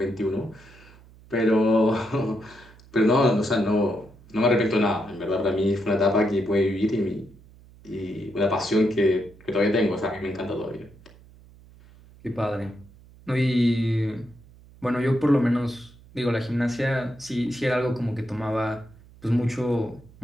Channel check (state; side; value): noise; right; hum, 24 dB below the sound